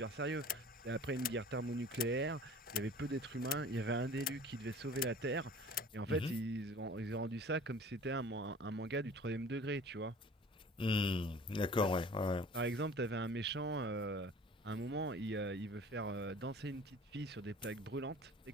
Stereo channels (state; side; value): normal; both; correlation 0.45